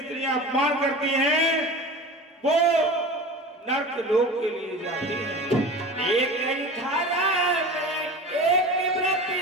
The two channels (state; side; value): normal; both; correlation 0.34